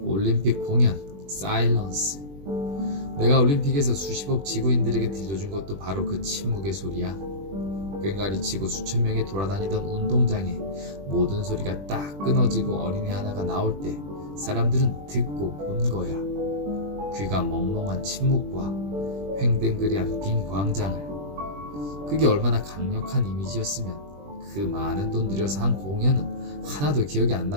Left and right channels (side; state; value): left; late; 21 ms